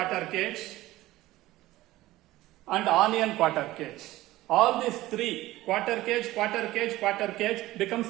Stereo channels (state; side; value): quieter; left; 17.0 dB